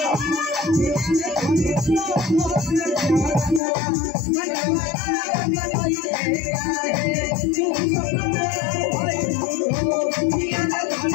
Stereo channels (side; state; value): right; drops out; at 3.6 s